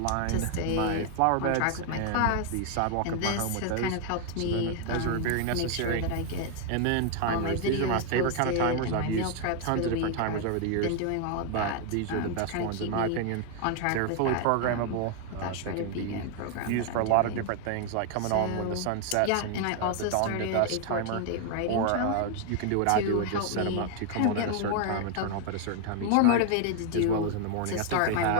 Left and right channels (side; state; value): both; different; correlation 0.00